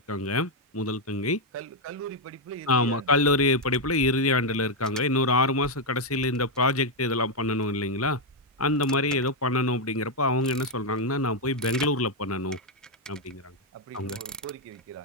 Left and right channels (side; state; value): both; normal; correlation 0.01